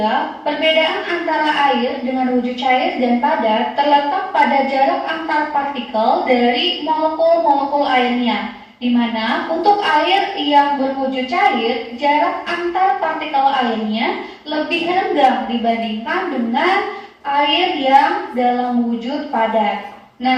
perbedaan antara air dengan wujud cair dan padat terletak pada jarak antar partikel dari molekul-molekul airnya, di mana untuk air yang berwujud cair, jarak antar partikel airnya lebih rendah dibandingkan dengan air yang dalam wujud padat.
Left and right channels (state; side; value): identical; both; correlation 1.00